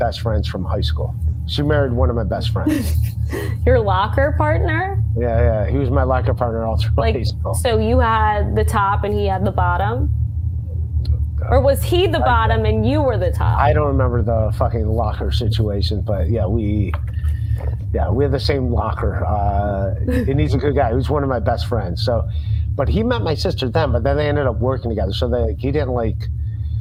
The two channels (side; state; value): both; identical; correlation 1.00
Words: friends from high school. She married one of my best friends. Your locker partner? Yeah, he was my locker partner all through high school. So you had the top and he had the bottom? Or was he the bottom and you were the top? I don't remember the fucking locker situation, but yeah, we have the same locker. And he's a good guy. He was one of my best friends. So, but he met my sister then, but then they ended up working together. So